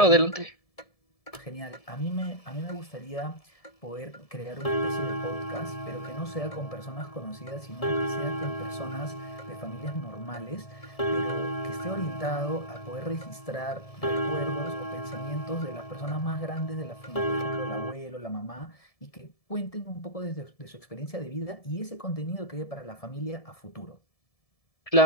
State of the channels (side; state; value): right; late; 1.7 ms